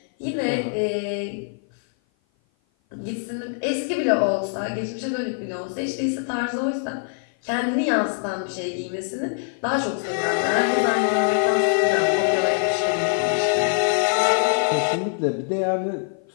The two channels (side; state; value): right; silent; 55 dB below the other